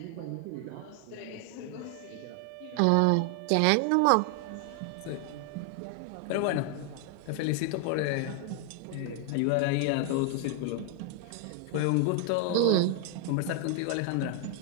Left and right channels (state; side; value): different; both; correlation 0.00